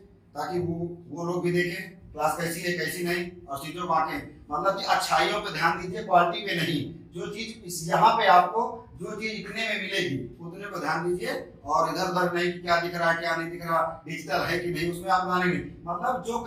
ताकि वो लोग भी देखें क्लास कैसी है कैसी नहीं, और चीजों को आके मतलब कि अच्छाइयों पे ध्यान दीजिए, क्वालिटी पे नहीं। जो चीज यहाँ पे आपको जो चीज लिखने में मिलेगी उतने को ध्यान दीजिए, और इधर उधर नहीं कि क्या दिख रहा है क्या नहीं दिख रहा, डिजिटल है कि नहीं, उसमें आप ध्यान नहीं। मतलब जो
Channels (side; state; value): both; identical; correlation 1.00